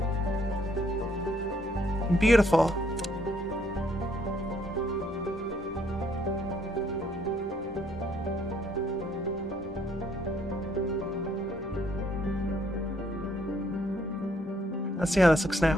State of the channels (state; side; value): normal; both; correlation 0.67